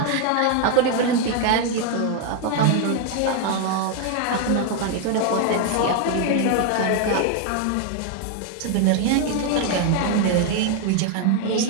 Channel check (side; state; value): both; different; correlation 0.00